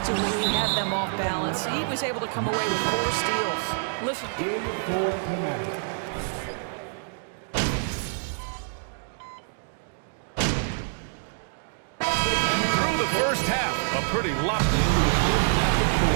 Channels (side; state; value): left; silent; digital silence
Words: he had them off balance. He was able to come away with 4 steals. Listen. Through the first half, a pretty lot.